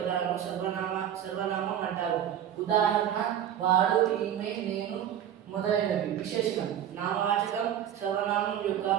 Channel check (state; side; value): quieter; left; 10.2 dB